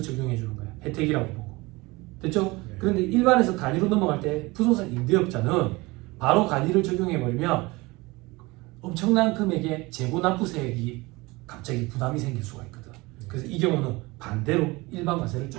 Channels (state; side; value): quieter; left; 22.8 dB